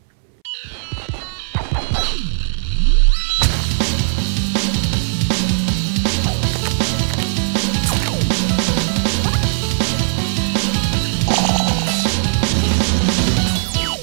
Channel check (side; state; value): left; silent; 68 dB below the other